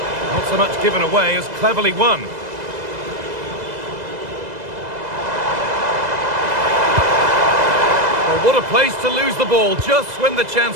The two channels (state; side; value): late; left; 2.0 ms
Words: Not so much given away as cleverly won. Well, what a place to lose the ball just when the